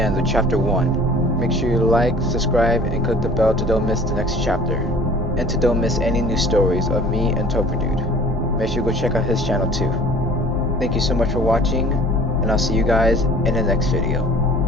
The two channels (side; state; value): both; normal; correlation 0.48